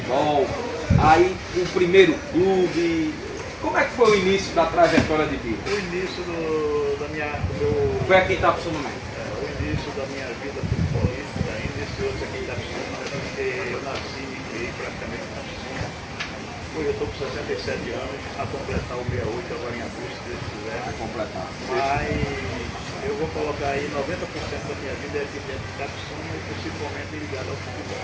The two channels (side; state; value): both; identical; correlation 1.00